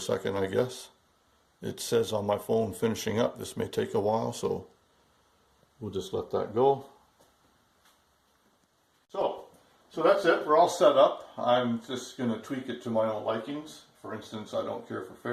second, I guess. It says on my phone finishing up. This may take a while, so we'll just let that go. So that's it. We're all set up. I'm just going to tweak it to my own likings. For instance, I don't care for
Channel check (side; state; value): both; identical; correlation 1.00